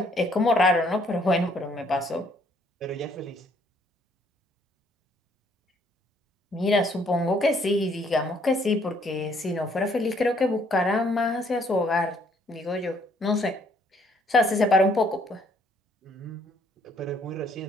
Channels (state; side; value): normal; both; correlation 0.65